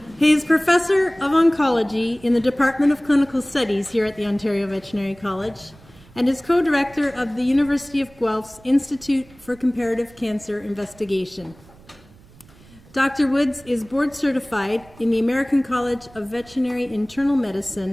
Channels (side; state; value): right; noise; rumble, 25 dB below the sound